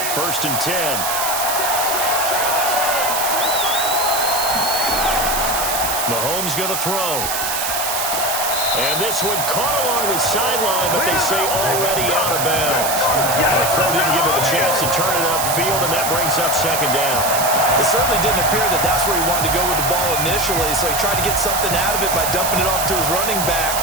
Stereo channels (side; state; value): right; noise; hiss, 1 dB below the sound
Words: 1st and 10. Mahomes going to throw. And this one caught along the sideline, but they say already out of bounds. The throw didn't give him a chance to turn it upfield, and that brings up 2nd down. It certainly didn't appear that that's where he wanted to go with the ball initially, so he tried to get something out of it by dumping it off to his running back